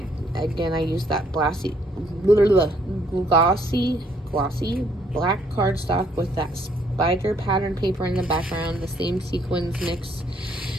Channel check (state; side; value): normal; both; correlation 0.67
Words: used that glossy black cardstock with that spider pattern paper in the background, the same sequins mix